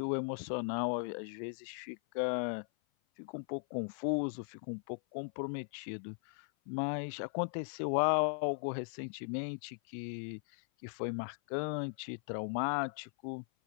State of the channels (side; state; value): right; silent; 52 dB below the other